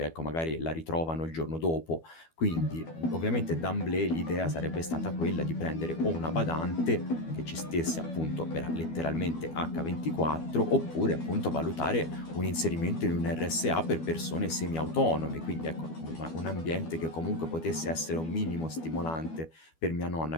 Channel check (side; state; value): right; late; 12 ms